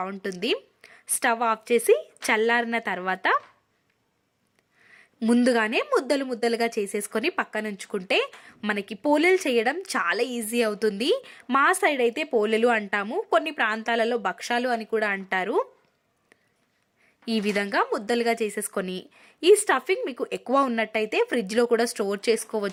స్టవ్ ఆఫ్ చేసి చల్లారిన తర్వాత ముందుగానే ముద్దలుగా చేసేసుకొని పక్కన ఉంచుకుంటే మనకి పోలేలు చేయడం చాలా ఈజీ అవుతుంది. మా సైడ్ అయితే పోలేలు అంటాము, కొన్ని ప్రాంతాలలో భక్షాలు అని కూడా అంటారు. ఈ విధంగా ముద్దలుగా చేసేసుకొని ఈ స్టఫింగ్ మీకు ఎక్కువ ఉన్నట్టయితే ఫ్రిడ్జ్లో కూడా స్టోర్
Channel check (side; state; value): both; identical; correlation 1.00